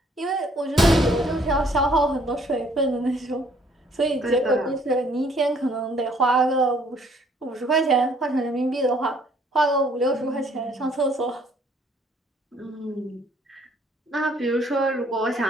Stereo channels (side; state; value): both; normal; correlation 0.62